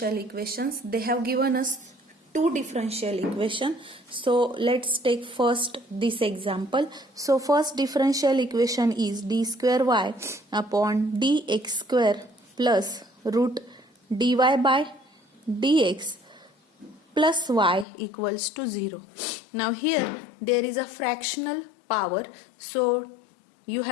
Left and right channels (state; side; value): drops out; right; at 17.9 s